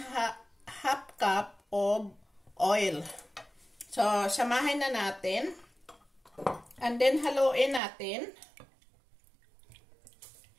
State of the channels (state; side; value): drops out; left; at 7.8 s